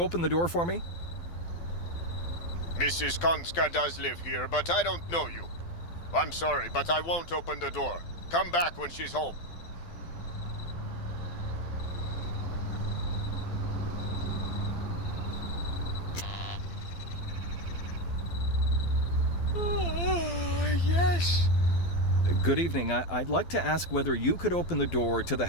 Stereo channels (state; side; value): late; right; 12 ms